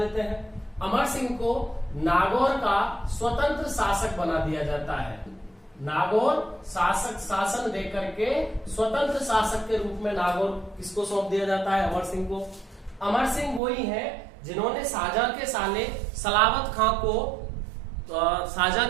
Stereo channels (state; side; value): drops out; left; at 13.6 s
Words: हैं। अमर सिंह को नागौर का स्वतंत्र शासक बना दिया जाता है। नागौर शासन देकर के स्वतंत्र शासक के रूप में नागौर किसको सौंप दिया जाता है? अमर सिंह को। अमर सिंह वही है जिन्होंने शाहजहां के साले सलावत खां को शाहजहां